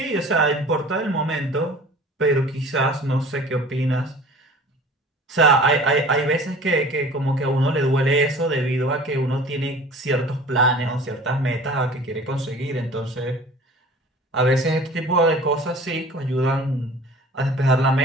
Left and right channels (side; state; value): both; normal; correlation 0.44